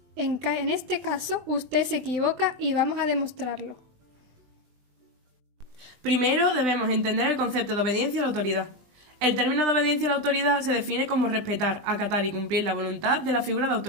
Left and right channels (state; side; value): late; left; 20 ms